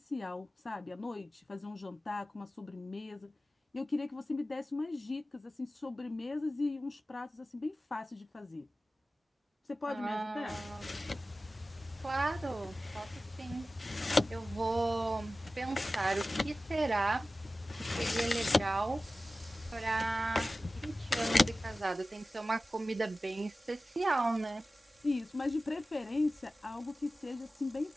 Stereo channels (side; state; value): both; normal; correlation 0.95